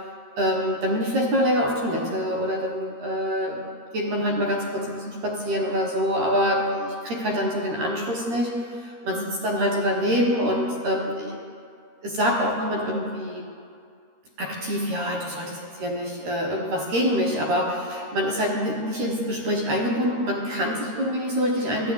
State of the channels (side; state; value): left; late; 13 ms